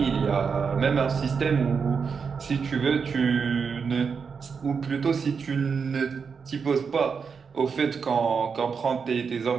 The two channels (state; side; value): quieter; left; 5.8 dB